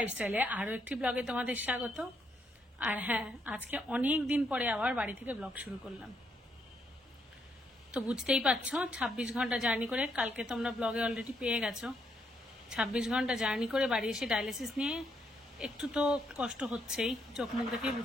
আরো একটি ব্লগে তোমাদের স্বাগত। আর হ্যাঁ, আজকে অনেক দিন পরে আবার বাড়ি থেকে ব্লগ শুরু করলাম। তো বুঝতেই পারছো 26 ঘন্টা জার্নি করে, কালকে তোমরা ব্লগে অলরেডি পেয়ে গেছো, 26 ঘন্টা জার্নি করে বাড়ি এসে ডায়ালিসিস নিয়ে একটু তো কষ্ট হচ্ছেই, চোখ মুখ দেখেই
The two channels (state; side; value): normal; both; correlation 0.75